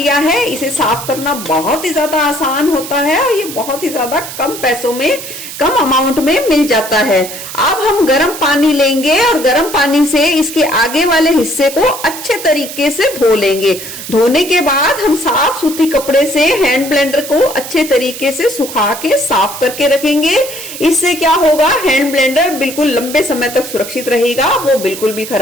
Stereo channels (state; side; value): noise; right; hiss, 10 dB below the sound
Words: है। इसे साफ करना बहुत ही ज्यादा आसान होता है और ये बहुत ही ज्यादा कम पैसों में, कम अमाउंट में मिल जाता है। अब हम गर्म पानी लेंगे और गर्म पानी से इसके आगे वाले हिस्से को अच्छे तरीके से धो लेंगे। धोने के बाद हम साफ सूती कपड़े से हैंड ब्लेंडर को अच्छे तरीके से सुखा के साफ करके रखेंगे। इससे क्या होगा, हैंड ब्लेंडर बिल्कुल लंबे समय तक सुरक्षित रहेगा, वो बिल्कुल भी